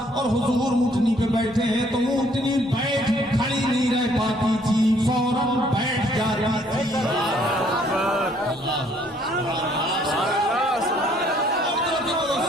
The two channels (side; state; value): both; normal; correlation 0.63